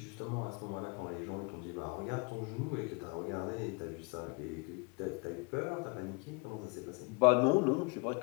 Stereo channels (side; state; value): right; quieter; 31.2 dB